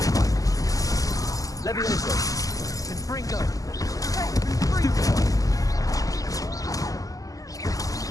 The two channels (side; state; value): right; late; 0.17 ms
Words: Levioso! Confringo! Stupefy!